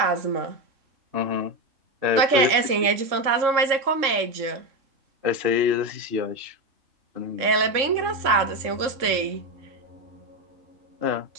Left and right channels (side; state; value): left; late; 3.6 ms